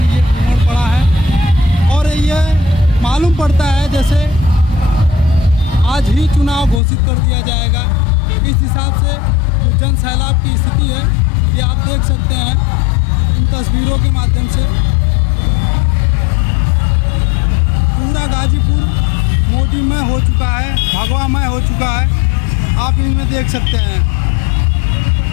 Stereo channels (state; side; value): drops out; right; at 6.8 s